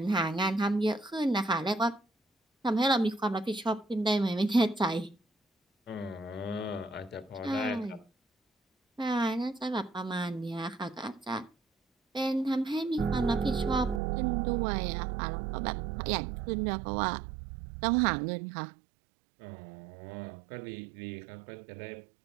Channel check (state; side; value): drops out; left; at 14.0 s